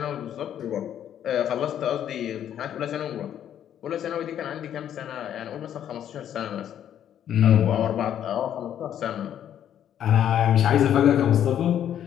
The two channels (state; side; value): quieter; right; 10.1 dB